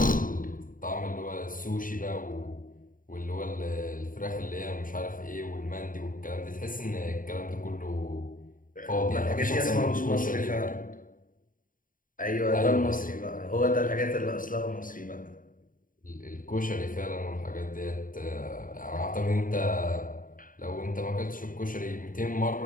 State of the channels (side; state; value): right; late; 0.40 ms